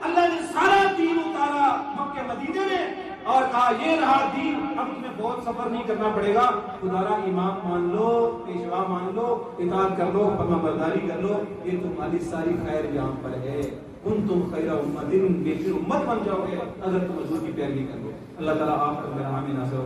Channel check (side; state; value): both; identical; correlation 1.00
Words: اللہ نے سارا دین اتارا مکہ مدینے میں اور کہا یہ رہا دین، اب تمہیں بہت سفر نہیں کرنا پڑے گا. خدا امام مان لو، پیشوا مان لو، اطاعت کر لو، فرما برداری کر لو، یہ تمہاری ساری خیر یہاں پر ہے. تم خیر امت، بہتر امت بن جاؤ گے اگر تم حضور کی پیروی کر لو. اللہ تعالیٰ آپ کو میرا حامی ناصر